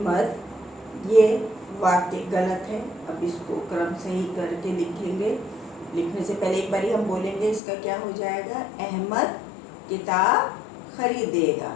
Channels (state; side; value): drops out; right; at 7.6 s